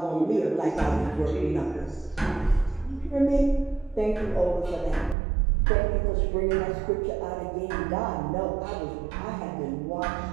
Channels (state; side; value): drops out; left; at 5.2 s